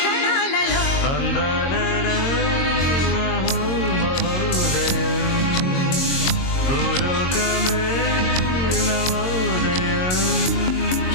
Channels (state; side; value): late; right; 22 ms